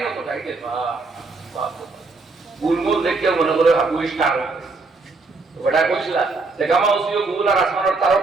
মতো তাইতে গুলমুল দেখে মনে করে হাবুই স্টার ওটা কইছিল যে গামা উসিও গুল আর আসমানের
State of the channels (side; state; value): left; quieter; 3.8 dB